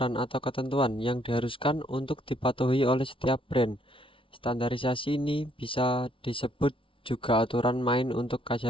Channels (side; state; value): right; late; 0.25 ms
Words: atau ketentuan yang diharuskan untuk dipatuhi oleh setiap brand. Standarisasi ini bisa disebut juga aturan main untuk